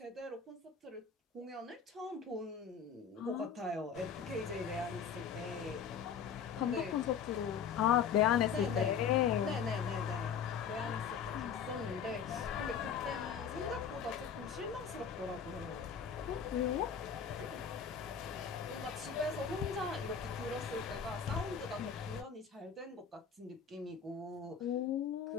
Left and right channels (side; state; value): right; quieter; 7.0 dB